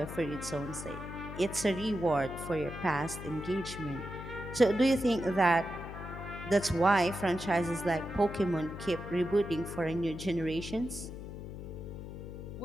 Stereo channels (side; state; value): left; noise; hum, 10 dB below the sound